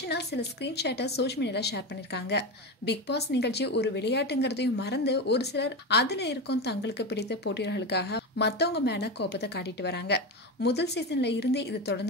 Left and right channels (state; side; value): normal; both; correlation 0.18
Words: சில ஸ்கிரீன்ஷாட்டை சோஷியல் மீடியால ஷேர் பண்ணிருக்காங்க. பிக் பாஸ் நிகழ்ச்சி ஒரு விளையாட்டுங்கிறதையும் மறந்து ஒரு சிலர் அதுல இருக்கும் தங்களுக்கு பிடித்த போட்டியாளர்களுக்காக மத்தவங்க மேல கோபத்தை காட்டிட்டு வராங்க. முதல் சீசன்ல இருந்தே இது